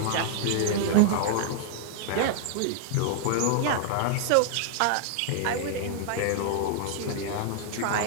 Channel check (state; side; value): different; both; correlation -0.01